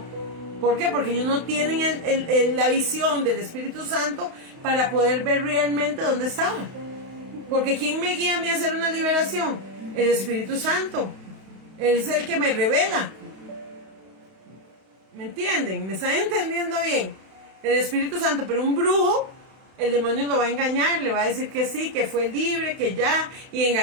¿Por qué? Porque ellos no tienen la visión del Espíritu Santo para poder ver realmente dónde estaba. Porque ¿quién me guía a mí a hacer una liberación? El Espíritu Santo. Él es el que me revela. ¿Me entienden? ¿Me están entendiendo bien? El Espíritu Santo. Pero un brujo, el demonio lo va a engañar, le va a decir que sí, que fue libre, que ya, y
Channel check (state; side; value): late; left; 32 ms